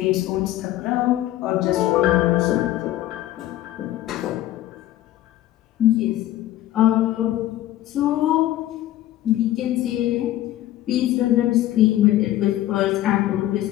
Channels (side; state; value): right; quieter; 14.2 dB